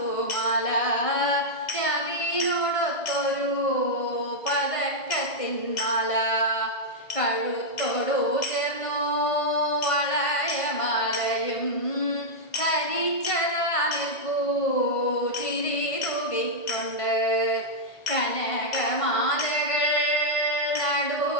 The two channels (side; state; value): right; late; 1.5 ms